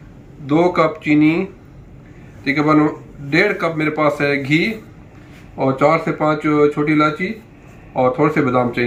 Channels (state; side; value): identical; both; correlation 1.00